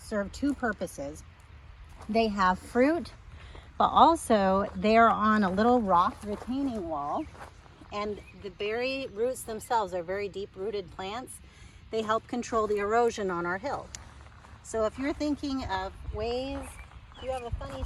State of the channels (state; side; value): identical; both; correlation 1.00